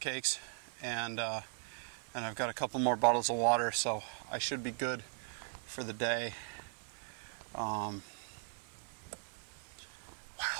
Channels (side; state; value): left; silent; 52 dB below the other